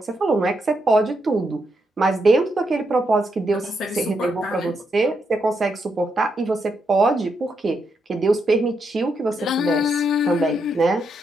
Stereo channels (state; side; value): normal; both; correlation 0.81